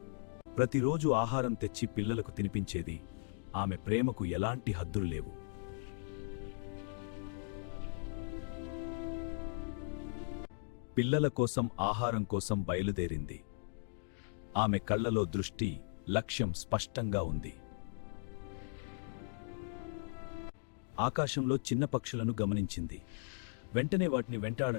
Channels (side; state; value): right; silent; digital silence